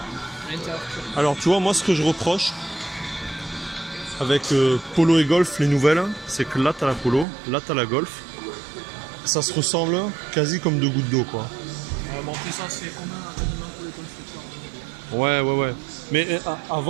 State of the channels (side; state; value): left; drops out; at 7.2 s